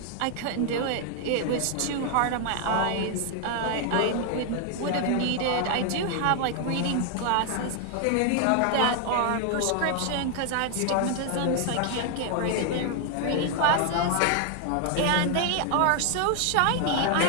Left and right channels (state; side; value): different; both; correlation 0.00